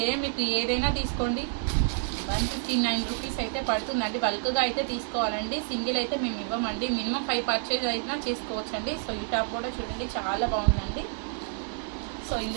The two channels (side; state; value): left; silent; 59 dB below the other